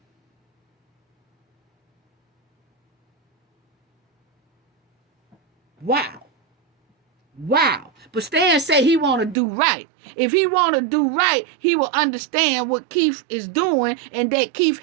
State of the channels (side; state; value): left; drops out; at 9.3 s